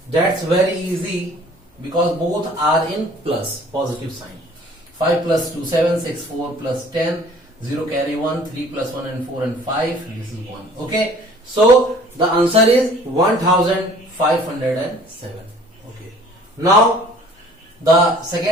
that's very easy because both are in plus positive sign. 5 plus 2 7 6 4 plus 10 0 carry 1 3 plus 1 and 4 and 5 this is 1. Okay, so the answer is 1507. Okay, now the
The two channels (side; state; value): both; normal; correlation 0.52